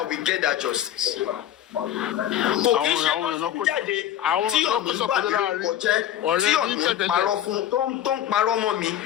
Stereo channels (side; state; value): right; quieter; 11.4 dB